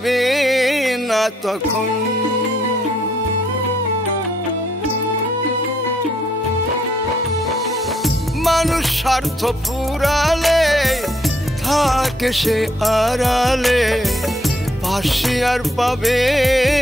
না তখন। মানুষ স্বার্থ পুরালে থাকে সে আড়ালে, পাশে আর পাবে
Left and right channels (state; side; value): normal; both; correlation 0.71